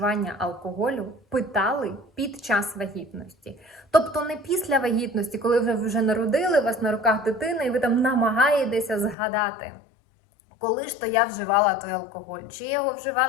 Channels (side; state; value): right; drops out; at 9.2 s